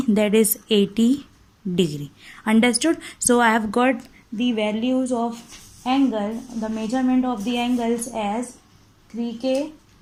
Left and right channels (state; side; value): identical; both; correlation 1.00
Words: that is 80 degree. Understood? So I have got the values of angle, the measurement of the angles as 3k,